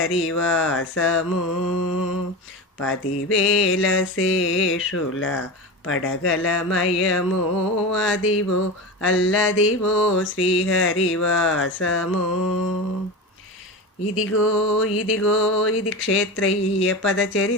10,000 శేషుల పడగలమయము, అదివో అల్లదివో శ్రీహరివాసము. ఇదిగో ఇదిగో ఇది క్షేత్రయ్య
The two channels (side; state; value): both; normal; correlation 0.24